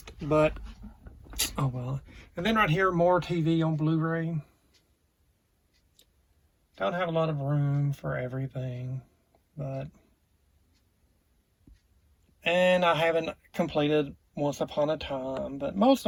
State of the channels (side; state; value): both; identical; correlation 1.00